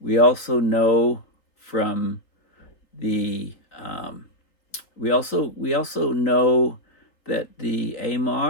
We also know from the we also know that the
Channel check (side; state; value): right; late; 3.9 ms